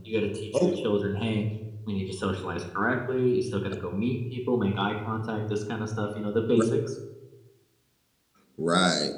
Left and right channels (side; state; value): both; identical; correlation 1.00